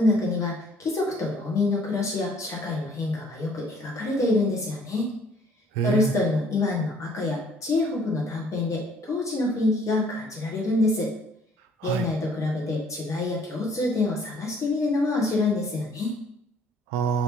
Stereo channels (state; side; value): normal; both; correlation 0.59